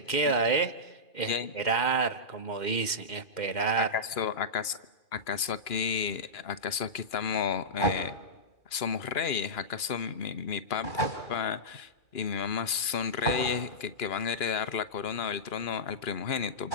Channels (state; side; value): late; right; 2.4 ms